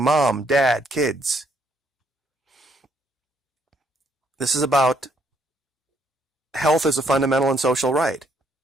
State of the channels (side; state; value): both; normal; correlation 0.70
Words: mom, dad, kids. This is about health as a fundamental and social right.